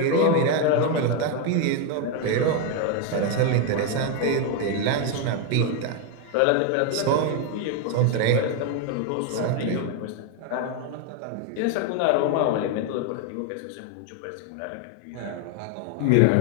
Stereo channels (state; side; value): different; both; correlation 0.01